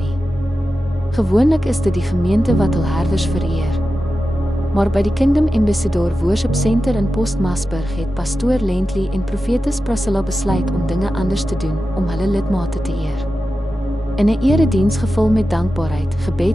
Gewoonlik is dit die gemeente wat hul herders vereer. Maar by die Kingdom Ambassador Worship Center in Postmasburg het pastoor Lentley en profetes Priscilla besluit om dinge anders te doen om hulle lidmate te eer. In 'n erediens gevul met dankbaarheid,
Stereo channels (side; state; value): both; normal; correlation 0.93